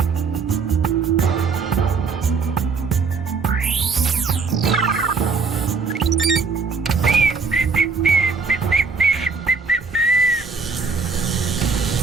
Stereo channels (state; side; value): quieter; left; 4.8 dB